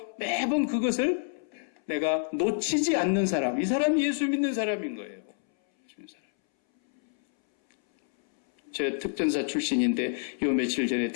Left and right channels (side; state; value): right; silent; 59 dB below the other